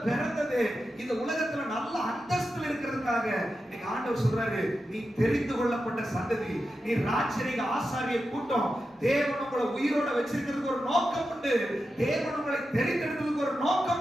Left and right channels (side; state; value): both; normal; correlation 0.90